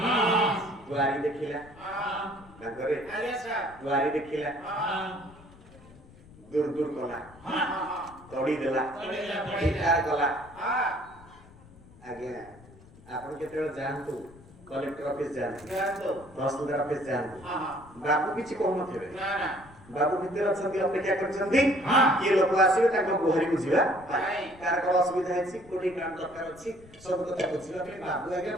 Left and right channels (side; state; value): left; noise; rumble, 22 dB below the sound